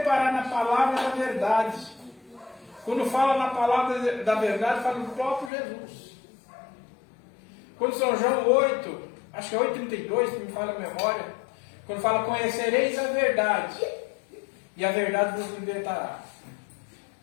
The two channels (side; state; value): right; drops out; at 5.5 s